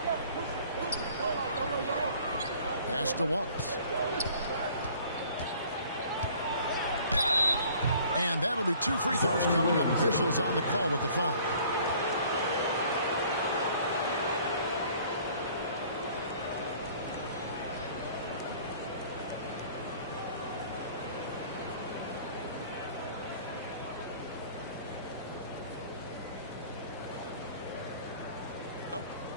Pass to Wallace. And that'll be 2 free throws coming up. Officials on the call with the foul.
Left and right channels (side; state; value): both; inverted; correlation -0.53